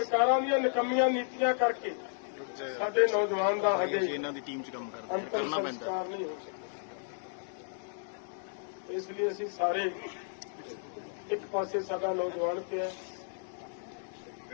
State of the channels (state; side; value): silent; right; digital silence